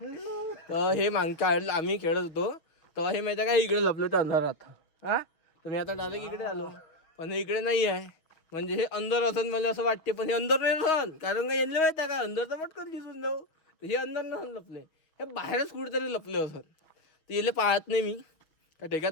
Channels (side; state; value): right; late; 6.1 ms